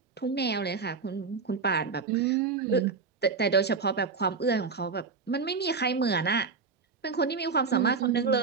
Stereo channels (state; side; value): quieter; left; 4.9 dB